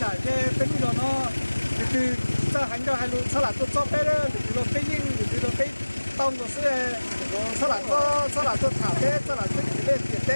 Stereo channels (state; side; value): inverted; both; correlation -1.00